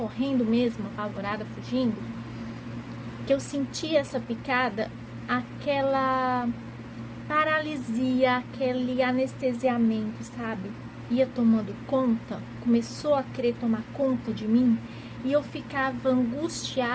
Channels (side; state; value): both; identical; correlation 1.00